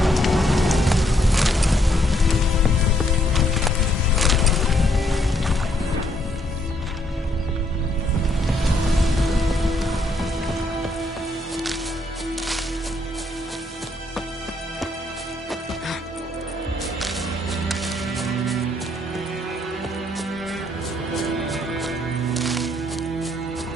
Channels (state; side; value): normal; both; correlation 0.71